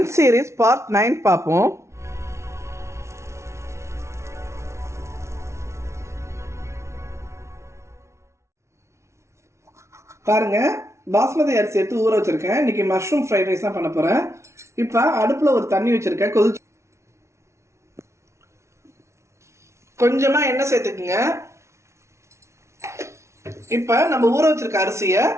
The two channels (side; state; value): left; late; 0.13 ms